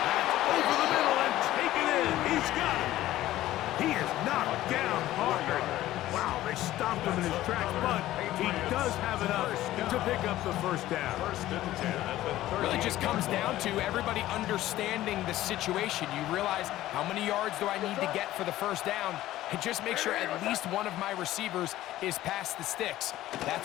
over the middle and taken in. He's got it. He is knocked down hard. Wow, they stopped him in his tracks, but he does have enough to pick up the first down. Really just comes down to everybody understanding the situation. You realize how many yards do I need to get for the first down, and just make sure at least one of my receivers is past the sticks.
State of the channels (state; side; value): quieter; right; 14.9 dB